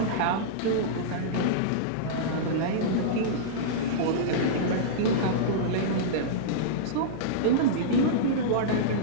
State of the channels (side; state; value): both; different; correlation -0.03